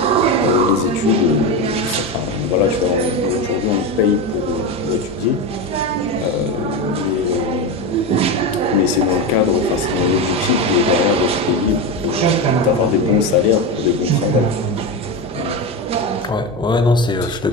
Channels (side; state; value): both; normal; correlation 0.17